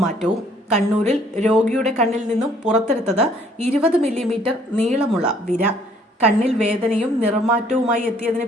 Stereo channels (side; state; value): both; normal; correlation 0.61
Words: കണ്ണൂരിൽ രോഗിയുടെ കണ്ണിൽ നിന്നും പുറത്തെടുത്തത് 20 മില്ലിമീറ്റർ നീളമുള്ള വിര. കണ്ണിൽ വേദനയും നിറമാറ്റവുമായി എത്തിയതിന്